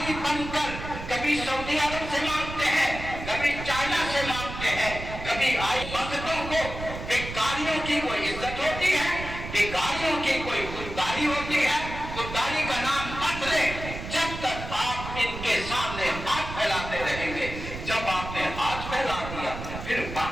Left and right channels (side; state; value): right; noise; rumble, 9 dB below the sound